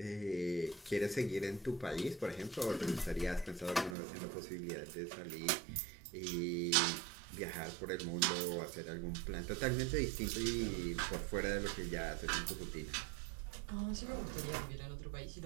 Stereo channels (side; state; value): left; drops out; at 4.0 s